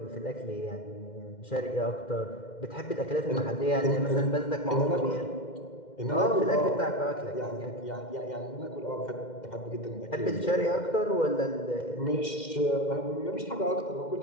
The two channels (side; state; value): right; late; 2.1 ms